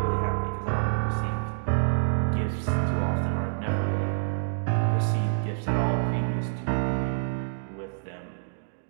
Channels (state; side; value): silent; left; digital silence